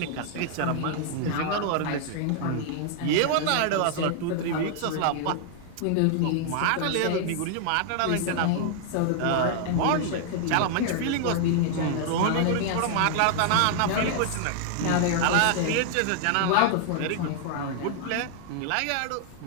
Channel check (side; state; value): both; different; correlation 0.00